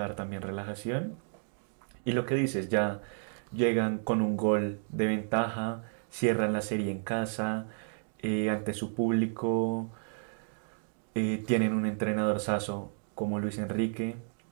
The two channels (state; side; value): silent; left; digital silence